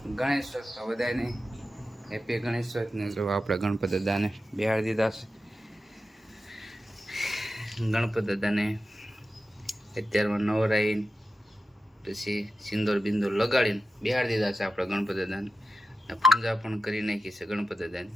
ગણેશ ચોથ, બધાને હેપી ગણેશ ચોથને જો આપણે ગણપત દાદાને બેહાડી દીધા છે. ગણપત દાદાને અત્યારમાં નવરાઈને પછી સિંદૂર બિંદુર લગાડીને બેહાડી દીધા છે આપણે ગણપત દાદાને. પૂજા પણ કરી નાખી છે ગણપત દાદાની.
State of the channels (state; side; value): normal; both; correlation 0.91